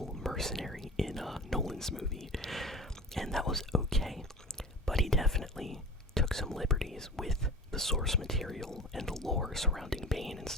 mercenary in Nolan's movie, and that was okay, but he definitely took some liberties with the source material and the lore surrounding Bane and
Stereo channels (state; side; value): normal; both; correlation 0.36